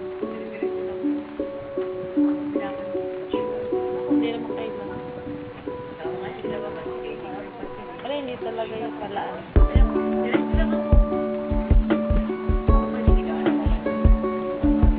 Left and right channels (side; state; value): both; identical; correlation 1.00